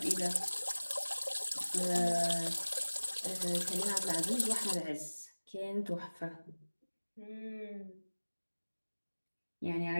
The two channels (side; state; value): both; inverted; correlation -1.00